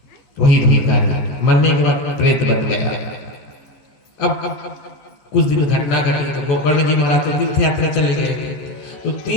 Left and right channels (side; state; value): right; late; 14 ms